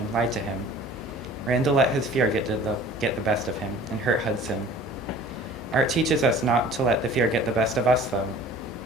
lied to him. Randall let his fear get the best of him and hurt Hudson. Art teaches us not to let the fear get the best of us, though.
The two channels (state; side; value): normal; both; correlation 0.47